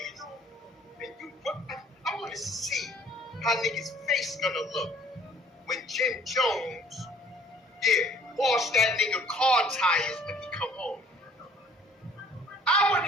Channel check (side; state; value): both; normal; correlation 0.55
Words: And I want to see how niggas' face gonna look when Jim Jones, wash that nigga car tires when he come home. I want